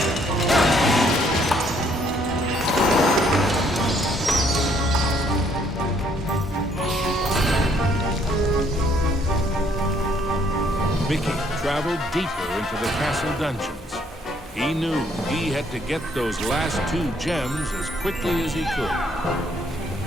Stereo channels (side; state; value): both; normal; correlation 0.66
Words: traveled deeper into the castle dungeons. He knew he had to get those last 2 gems as quickly as he could.